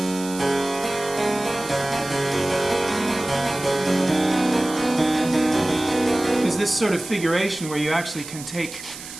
is this sort of figuration where you actually can take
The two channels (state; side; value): noise; right; hiss, 13 dB below the sound